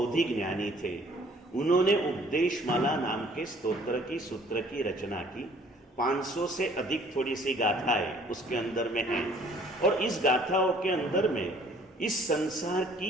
ज्ञानी थे। उन्होंने उपदेशमाला नाम के स्तोत्र की सूत्र की रचना की। 500 से अधिक थोड़ी सी गाथाएं उसके अंदर में हैं। और इस गाथाओं के अंदर में इस संसार की,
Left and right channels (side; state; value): both; normal; correlation 0.57